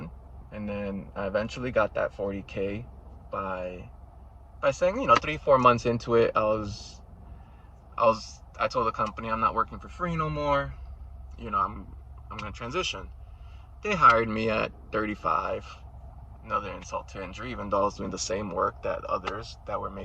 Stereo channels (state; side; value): identical; both; correlation 1.00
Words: And then I eventually got that 40K by saying, 3-4 months into it, I told the company I'm not working for free no more. I'm gonna transition. They hired me at 35. Another insult to injury, even though I was doing the same work that others that were